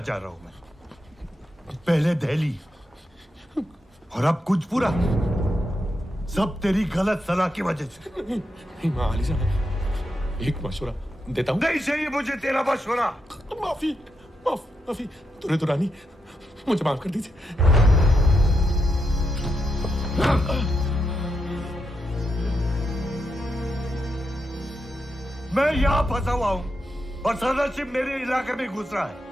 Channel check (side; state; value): both; normal; correlation 0.84